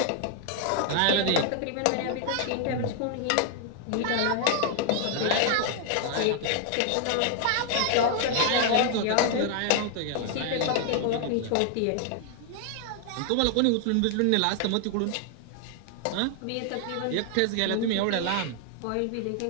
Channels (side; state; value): both; different; correlation 0.00